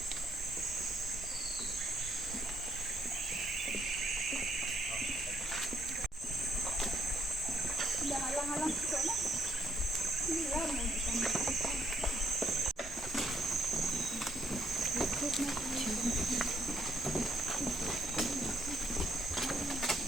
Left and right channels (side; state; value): both; normal; correlation 0.71